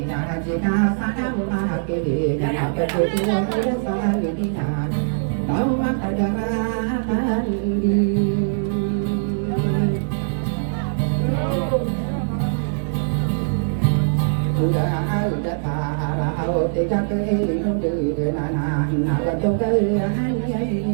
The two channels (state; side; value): silent; left; digital silence